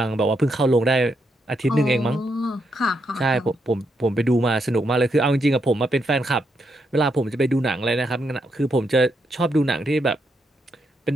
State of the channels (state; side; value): normal; both; correlation 0.80